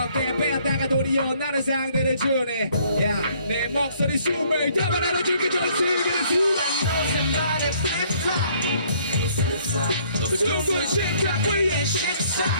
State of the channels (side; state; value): both; inverted; correlation -0.62